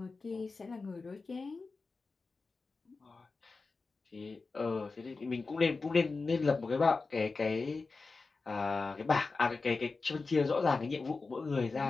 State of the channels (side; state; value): right; quieter; 4.1 dB